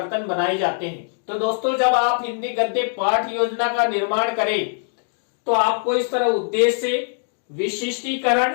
बनाए जाते हैं। तो दोस्तों, जब आप हिंदी गद्य पाठ योजना का निर्माण करें तो आपको इस तरह उद्देश्य,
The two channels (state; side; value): silent; right; digital silence